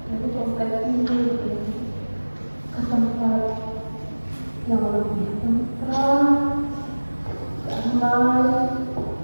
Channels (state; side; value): inverted; both; correlation -1.00